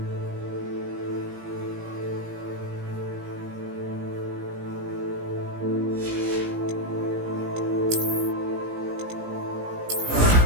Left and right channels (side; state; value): left; late; 17 ms